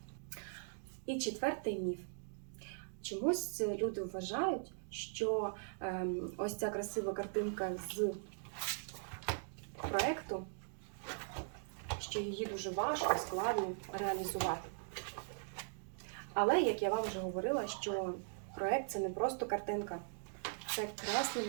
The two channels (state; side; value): silent; left; digital silence